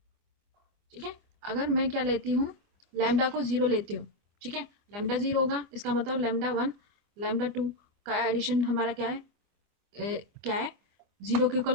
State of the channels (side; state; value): left; late; 24 ms